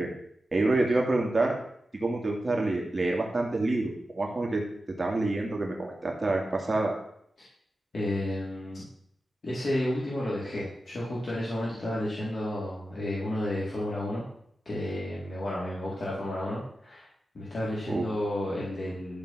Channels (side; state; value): both; normal; correlation 0.92